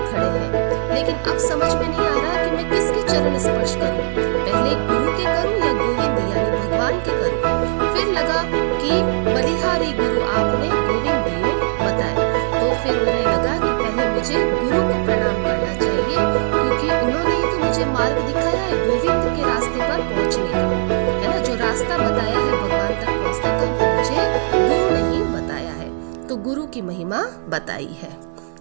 खड़े हैं, लेकिन अब समझ में नहीं आ रहा कि मैं किसके चरण स्पर्श करूं, पहले गुरु के करूं या गोविंद यानी भगवान के करूं। फिर लगा कि बलिहारी गुरु आपने, गोविंद दियो बताए। तो फिर उन्हें लगा कि पहले मुझे गुरु को प्रणाम करना चाहिए, क्योंकि उन्होंने ही तो मुझे मार्ग दिखाया है गोविंद के रास्ते पर पहुंचने का, है ना। जो रास्ता बताया है भगवान तक पहुंचने का, वो मुझे गुरु ने ही बताया है। तो गुरु की महिमा बताई है।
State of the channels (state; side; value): silent; left; digital silence